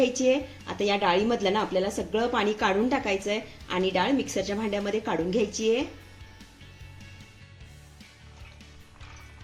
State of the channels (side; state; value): both; identical; correlation 1.00